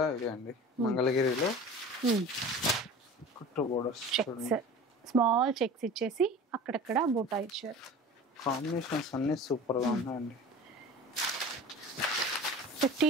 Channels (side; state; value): both; normal; correlation 0.38